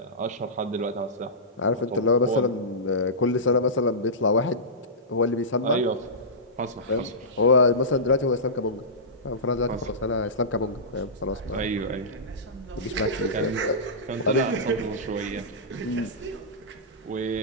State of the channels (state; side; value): normal; both; correlation -0.17